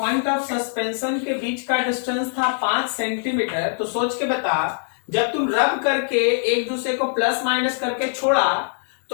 ऑफ सस्पेंशन के बीच का डिस्टेंस था 5 सेंटीमीटर, तो सोच के बता, जब तुम रब करके एक दूसरे को प्लस माइनस करके छोड़ा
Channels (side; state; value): right; silent; digital silence